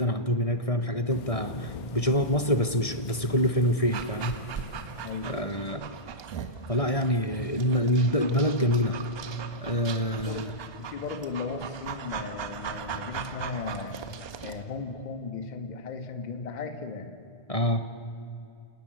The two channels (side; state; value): right; late; 1.6 ms